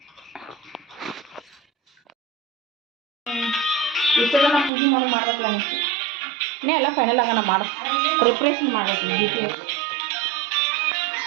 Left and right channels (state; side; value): drops out; left; at 4.7 s